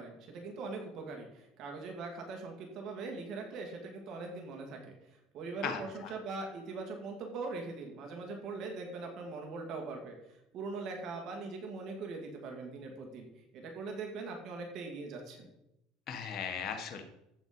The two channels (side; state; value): both; normal; correlation 0.49